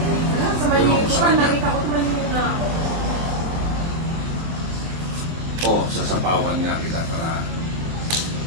O, sasapawan nga kita para...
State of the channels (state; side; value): late; left; 24 ms